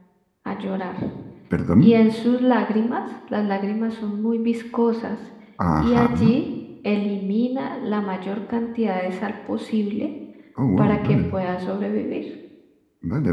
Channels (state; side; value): identical; both; correlation 1.00